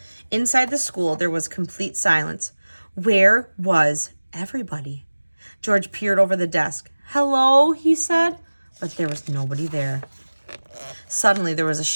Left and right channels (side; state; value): both; inverted; correlation -1.00